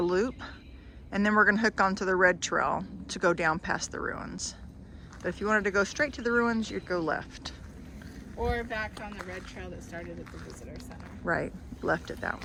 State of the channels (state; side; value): identical; both; correlation 1.00